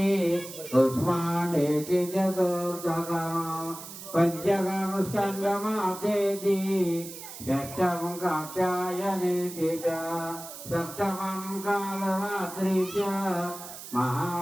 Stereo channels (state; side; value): noise; right; hiss, 12 dB below the sound